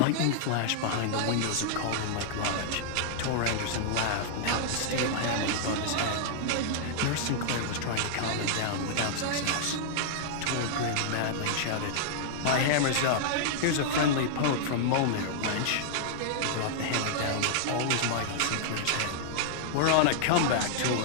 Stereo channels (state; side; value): different; both; correlation -0.01